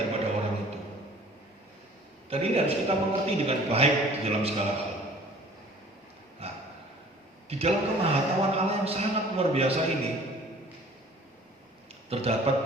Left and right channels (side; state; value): both; normal; correlation 0.50